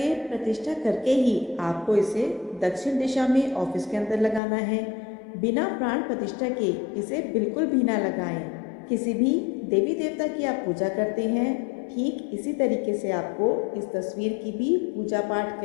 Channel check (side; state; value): right; drops out; at 4.4 s